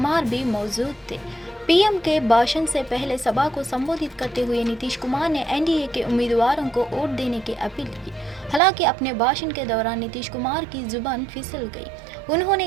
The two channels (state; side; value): drops out; left; at 8.6 s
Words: भी मौजूद थे। पीएम के भाषण से पहले सभा को संबोधित करते हुए नीतीश कुमार ने एनडीए के उम्मीदवारों को वोट देने की अपील की। हालांकि अपने भाषण के दौरान नीतीश कुमार की जुबान फिसल गई।